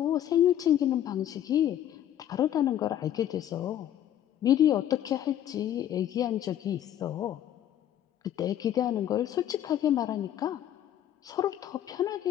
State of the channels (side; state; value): right; quieter; 11.1 dB